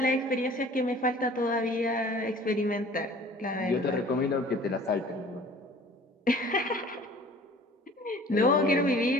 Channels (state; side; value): normal; both; correlation 0.48